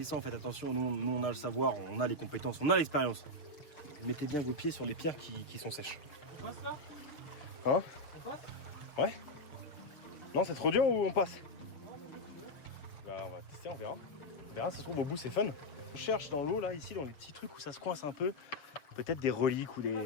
Faites attention, nous on a le savoir, on a les compétences, on a l'expérience. Mettez bien vos pieds sur les pierres qui sont sèches. On passe là? Hein? On passe? Ouais? Non, c'est trop dur ou on passe? Bah on va tester, on verra. On verra, ça se trouve au bout c'est fun. On cherche dans l'eau là, ici, dans les petits trucs où ça se coince un peu. Peut-être des reliques ou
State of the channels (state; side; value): late; right; 6.7 ms